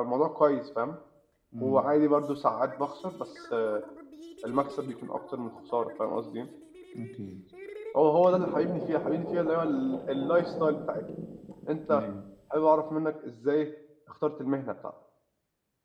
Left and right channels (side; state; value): both; identical; correlation 1.00